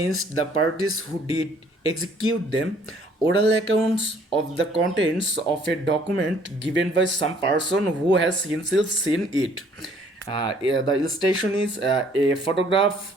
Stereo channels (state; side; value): normal; both; correlation 0.60